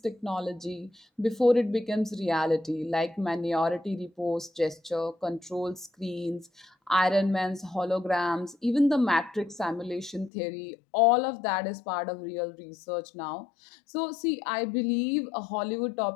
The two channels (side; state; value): right; drops out; at 10.3 s